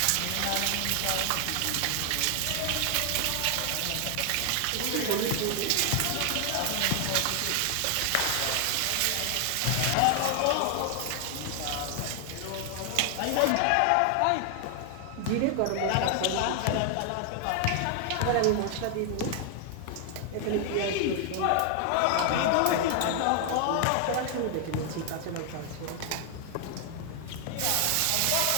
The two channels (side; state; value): both; different; correlation 0.00